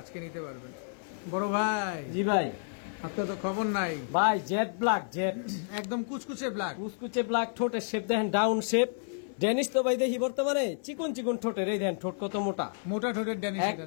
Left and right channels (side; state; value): right; silent; 57 dB below the other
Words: আজকে নিতে পারবেন। বড় ভাই, জি ভাই। আপনার তো খবর নাই। ভাই জেড ব্ল্যাক, জেড একদম কুচকুচে ব্ল্যাক। কুচকুচে ব্ল্যাক, ঠোঁটের শেপ দেখেন ডাউন শেপ। ডেনিস তো ভাই দেখি বর্তমানে চিকন চিকন ঠোঁটের, এই দেন ঠোঁট কত মোটা, মোটা ঠোঁটের ড্যানিশ।